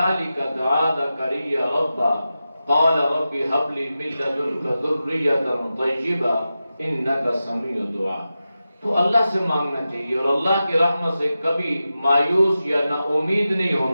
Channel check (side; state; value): both; inverted; correlation -0.92